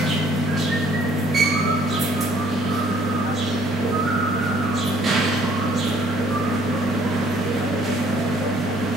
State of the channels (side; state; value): both; normal; correlation 0.60